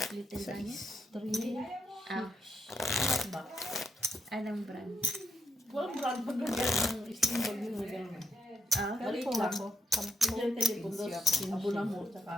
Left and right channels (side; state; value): both; normal; correlation 0.77